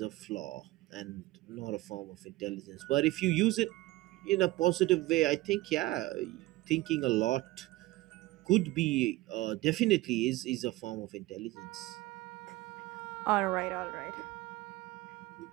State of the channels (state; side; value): quieter; left; 18.7 dB